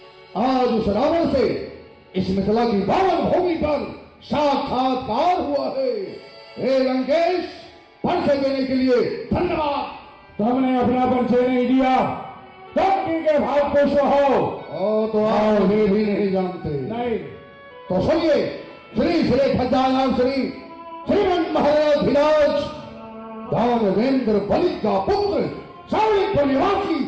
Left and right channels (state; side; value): identical; both; correlation 1.00